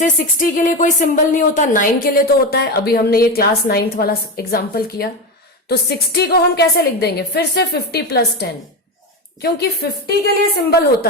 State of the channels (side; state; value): both; normal; correlation 0.17